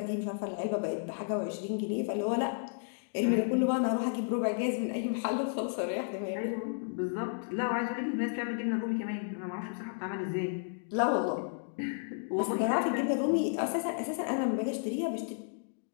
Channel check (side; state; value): right; silent; digital silence